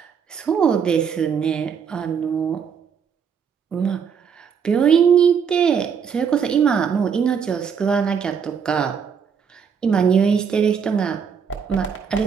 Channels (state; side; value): quieter; left; 6.9 dB